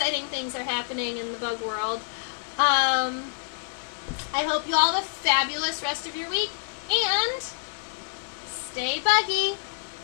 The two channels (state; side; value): silent; right; digital silence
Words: things are happening in the bug world. I hope you all have a fabulous rest of your week, and stay buggy.